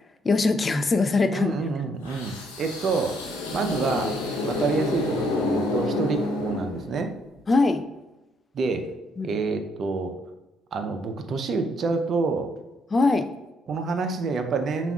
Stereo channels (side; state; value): both; normal; correlation 0.71